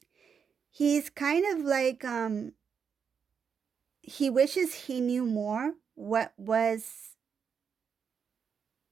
he's kind of like, he wishes he knew more what's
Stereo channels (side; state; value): left; quieter; 6.7 dB